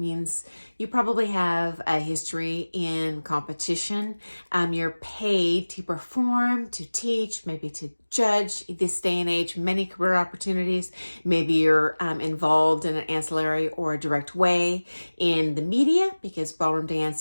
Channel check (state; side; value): inverted; both; correlation -1.00